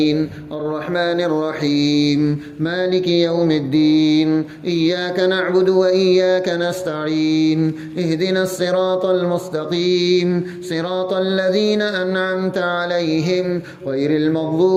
الرحمن الرحيم مالك يوم الدين إياك نعبد وإياك نستعين اهدنا الصراط المستقيم صراط الذين أنعمت عليهم غير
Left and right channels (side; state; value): both; identical; correlation 1.00